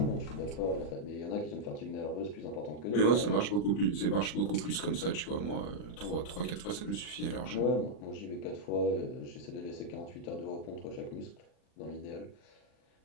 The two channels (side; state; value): right; late; 40 ms